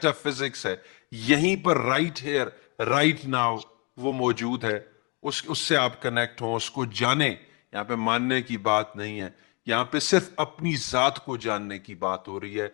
فزکس ہے، یہیں پر رائٹ ہیئر رائٹ ناؤ وہ موجود ہے. اس سے آپ کنیکٹ ہوں، اس کو جانیں. یہاں پہ ماننے کی بات نہیں ہے، یہاں پہ صرف اپنی ذات کو جاننے کی بات ہو رہی ہے،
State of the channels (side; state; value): right; quieter; 29.0 dB